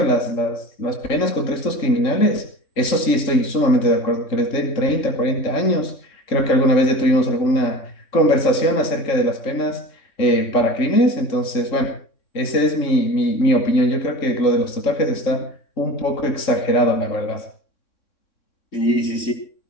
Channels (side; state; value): right; late; 3.8 ms